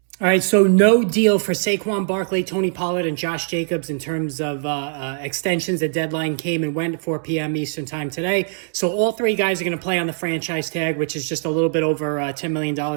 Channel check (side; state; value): left; silent; digital silence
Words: All right, so no deal for Saquon Barkley, Tony Pollard, and Josh Jacobs in terms of extensions. The deadline came and went at 4 p.m. Eastern time today. So all three guys are going to play on the franchise tag, which is just a little bit over $10 million